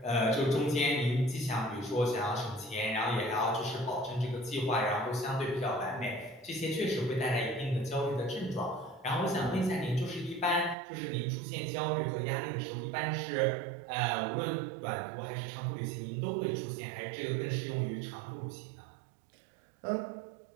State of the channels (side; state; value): left; drops out; at 10.8 s